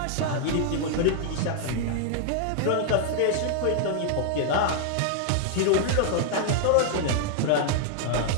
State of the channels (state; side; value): different; both; correlation 0.00